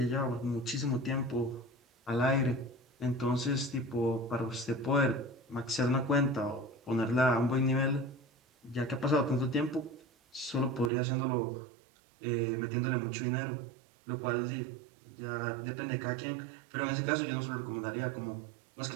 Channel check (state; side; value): drops out; left; at 10.9 s